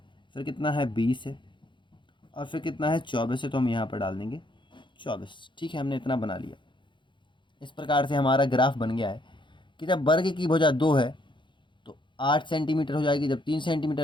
फिर कितना है 20 है, और फिर कितना है 24 है, तो हम यहाँ पर डाल देंगे 24। ठीक है, हमने इतना बना लिया। इस प्रकार से हमारा ग्राफ बन गया है कि जब वर्ग की भुजा 2 है तो 8 सेंटीमीटर हो जाएगी, जब 3 सेंटीमीटर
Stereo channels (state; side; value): late; right; 0.23 ms